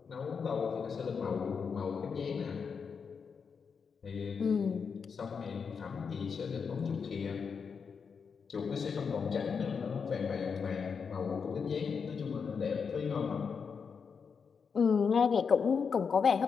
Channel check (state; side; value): quieter; right; 6.0 dB